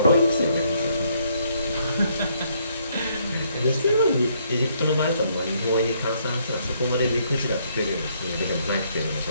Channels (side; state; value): both; inverted; correlation -0.70